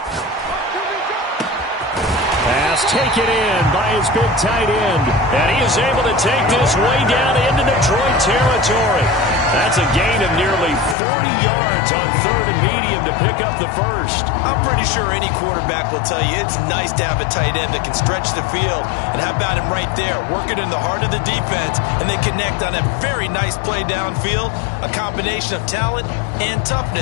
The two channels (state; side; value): drops out; right; at 11.0 s